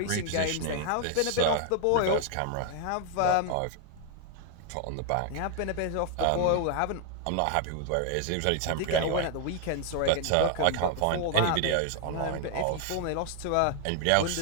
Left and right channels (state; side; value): different; both; correlation 0.00